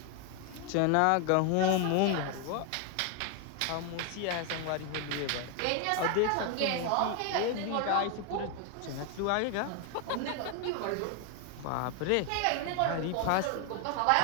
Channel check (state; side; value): different; both; correlation 0.01